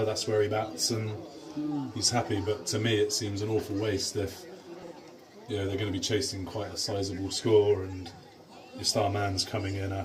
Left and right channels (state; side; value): identical; both; correlation 1.00